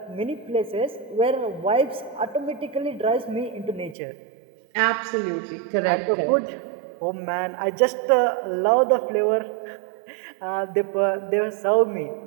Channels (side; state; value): left; drops out; at 4.0 s